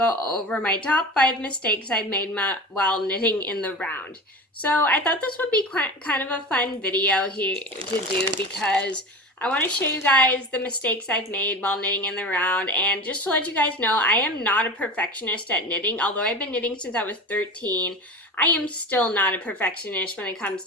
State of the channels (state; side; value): normal; both; correlation 0.30